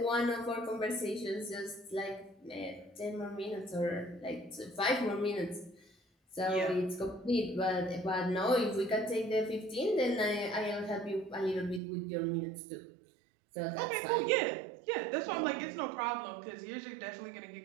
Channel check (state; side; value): drops out; left; at 11.8 s